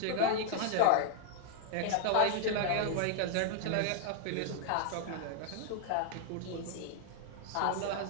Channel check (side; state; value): both; different; correlation 0.00